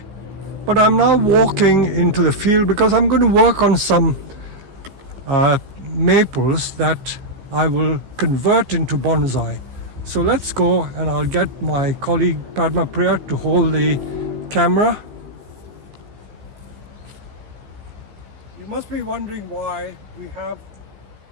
But I'm now walking into the field because I'm going to work on some maples that I will convert into bonsai. So let's go, and I'll get my colleague Padma Priya to hold the camera. You must be wondering why we have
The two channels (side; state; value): left; late; 15 ms